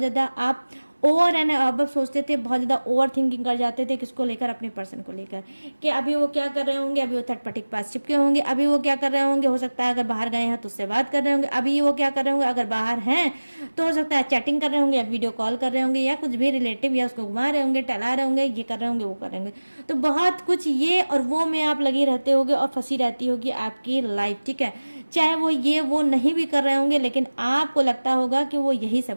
आप ओवर एंड अब सोचते थे, बहुत ज़्यादा ओवर थिंकिंग कर जाते थे। किसको लेकर? अपने पर्सन को लेकर, कि अभी वो क्या कर रहे होंगे, अभी वो थर्ड पार्टी के पास चिपके होंगे, अभी वो क्या कर रहे होंगे, हो सकता है अगर बाहर गए हैं तो उससे बात कर रहे होंगे, अभी वो क्या कर रहे होंगे, अगर बाहर हैं तो हो सकता है चैटिंग कर रहे होंगे या वीडियो कॉल कर रहे होंगे या कुछ भी रिलेटिव या उसको घुमा रहे होंगे, टहला रहे होंगे, ये कर रहे होंगे, वो कर रहे होंगे। तो बहुत कुछ ये और वो में आप लगी रहते होगे और फंसी रहती होगी आपकी लाइफ, ठीक है। चाहे वो ये वो नहीं भी कर रहे होंगे लेकिन आपको लगता होगा कि वो यही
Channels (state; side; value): inverted; both; correlation -1.00